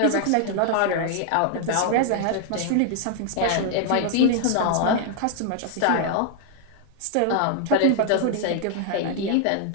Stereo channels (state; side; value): different; both; correlation 0.00